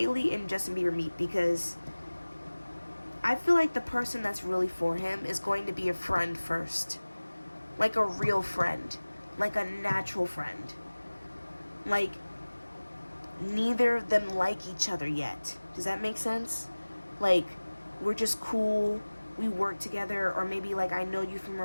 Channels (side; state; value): both; inverted; correlation -1.00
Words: and Justin Bieber meet? Because I feel like the person that's really for him is going to be a friend first. Like a real friend. Like a natural friend. Like, neither of them like each other yet. Does that make sense? Like, we're just cool. We work together. Or maybe, like, I know you from